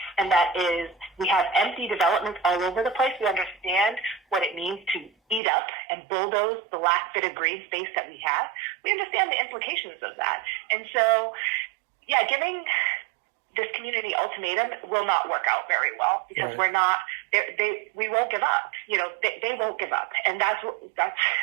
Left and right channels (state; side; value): drops out; left; at 5.4 s